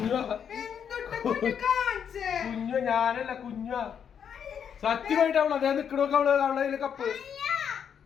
കുഞ്ഞു ഞാനല്ല, കുഞ്ഞു. സത്യമായിട്ട് അവള് അതേ നിക്കണോക്കെ അവളെ കപ്പ്.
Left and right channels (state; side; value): quieter; right; 7.9 dB